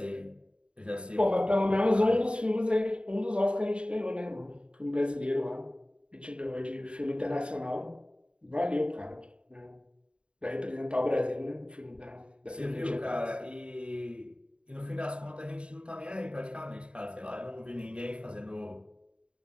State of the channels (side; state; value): left; late; 0.055 ms